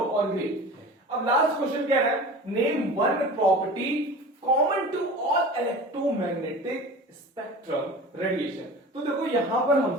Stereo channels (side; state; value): both; normal; correlation 0.37